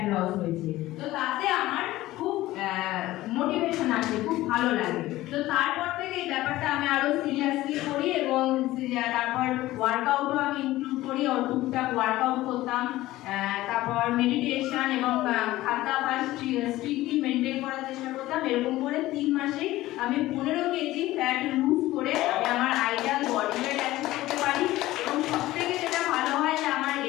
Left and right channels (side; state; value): right; quieter; 16.7 dB